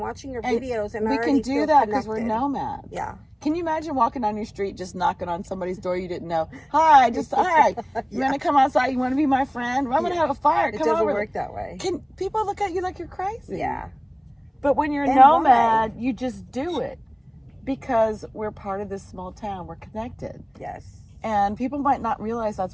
watching her videos, and we can do that because we're nomads. Yeah. Can you imagine walking down your street, just knocking on somebody's door you didn't know? Hi, hi. You want to come outside? You want to be my friend? I'm going to have a fire. Come over. It doesn't work that way. Can people look at you like you're crazy? Yeah. But when you're a nomad, you just do it because we're part of this small town. We're connected. Yes. And people might not realize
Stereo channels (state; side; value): identical; both; correlation 1.00